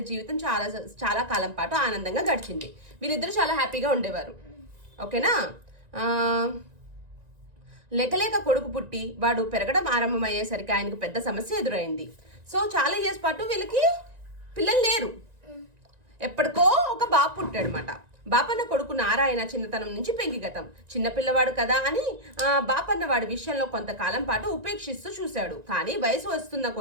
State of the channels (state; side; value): late; left; 1.9 ms